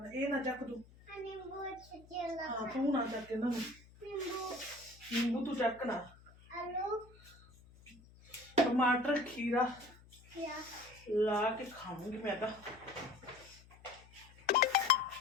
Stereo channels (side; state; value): left; noise; hum, 23 dB below the sound